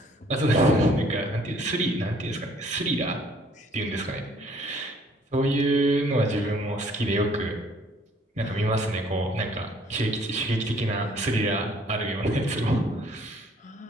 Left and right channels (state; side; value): normal; both; correlation 0.60